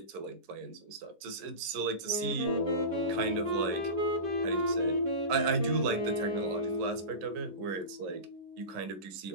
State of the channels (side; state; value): left; late; 10 ms